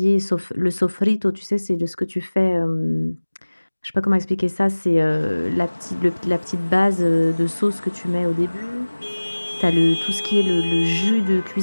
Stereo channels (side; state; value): both; inverted; correlation -1.00